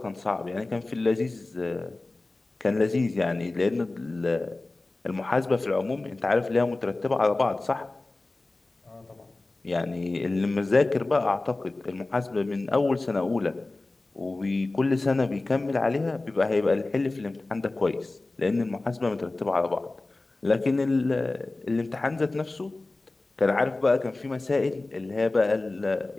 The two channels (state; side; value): quieter; right; 3.1 dB